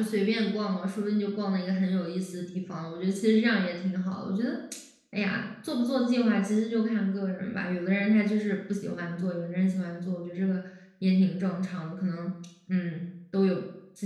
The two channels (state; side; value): identical; both; correlation 1.00